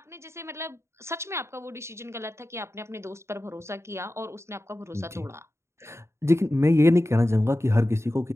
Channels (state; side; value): late; left; 0.13 ms